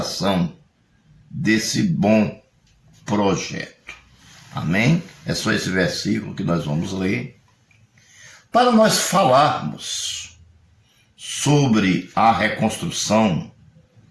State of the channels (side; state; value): both; identical; correlation 1.00